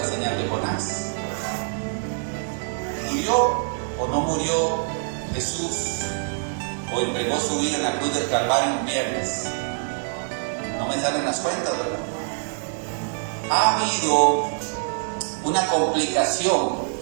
señal de Jonás. ¿Murió o no murió Jesús? ¿O entregó su vida en la cruz del Calvario un viernes? No me salen las cuentas, ¿verdad? Ha habido una complicación,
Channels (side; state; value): left; silent; digital silence